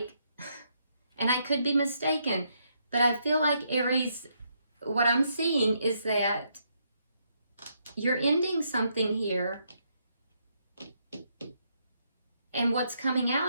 and I could be mistaken, but I feel like Aries, what I'm seeing is that you're ending something here, and what's coming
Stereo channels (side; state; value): both; inverted; correlation -0.76